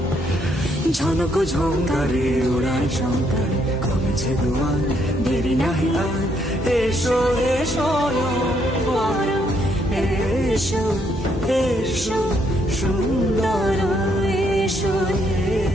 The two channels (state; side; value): normal; both; correlation 0.72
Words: ঝনক ঝঙ্কারে ওড়ায় শঙ্কারে, কমেছে দুয়ার দেরি নাহি আর। এসো হে স্বয়ংবর, এসো এসো সুন্দর, এসো হে